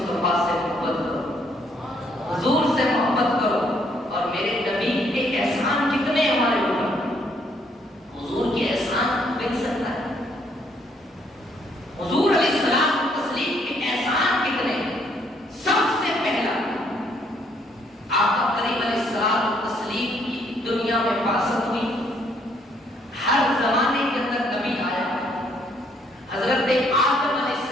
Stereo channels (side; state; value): both; normal; correlation 0.68